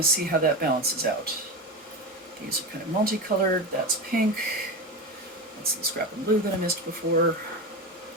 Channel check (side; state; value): both; normal; correlation 0.20